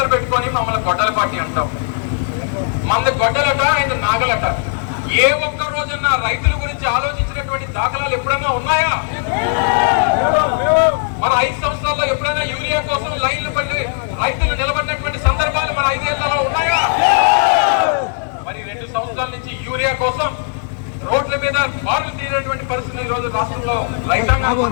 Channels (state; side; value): silent; right; digital silence